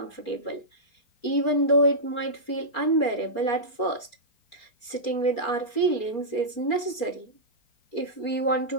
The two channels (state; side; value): late; right; 4.3 ms